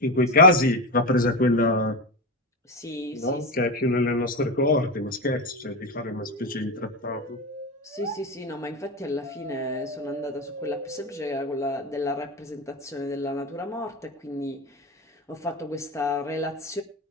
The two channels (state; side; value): normal; both; correlation 0.16